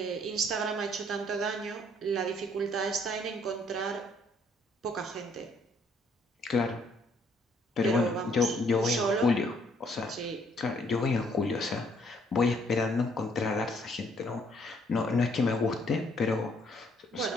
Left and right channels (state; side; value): normal; both; correlation 0.66